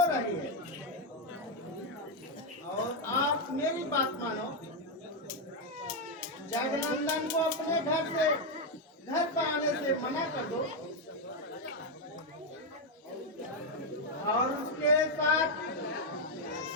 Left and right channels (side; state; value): both; normal; correlation 0.03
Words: रही है। और आप मेरी बात मानो, जगनंदन को अपने घर पर आने से मना कर दो और उसके साथ